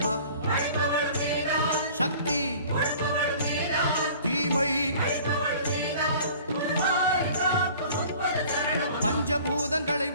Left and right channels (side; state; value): both; inverted; correlation -0.47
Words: சக்தி தீமை பஞ்சபூதங்களை